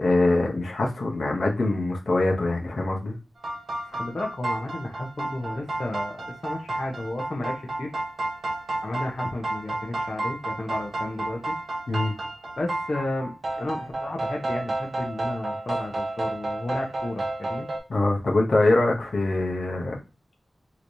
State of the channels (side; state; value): both; normal; correlation 0.95